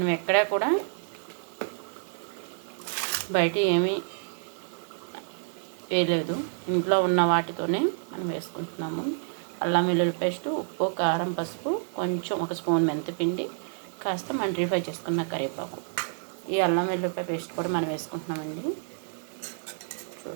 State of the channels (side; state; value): left; silent; digital silence